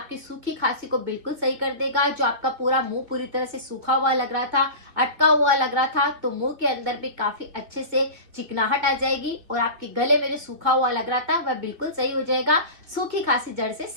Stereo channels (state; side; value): late; left; 2.0 ms